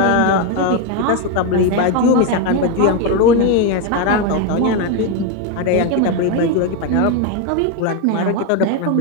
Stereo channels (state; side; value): different; both; correlation 0.02